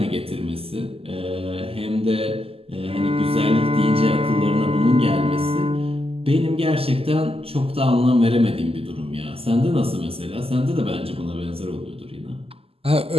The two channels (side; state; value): left; late; 0.28 ms